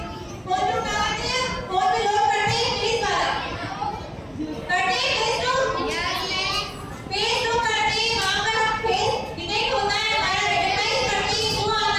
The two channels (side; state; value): both; identical; correlation 1.00